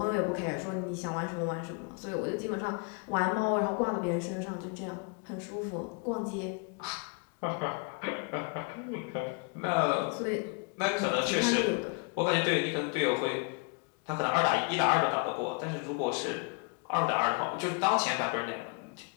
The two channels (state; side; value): quieter; right; 33.6 dB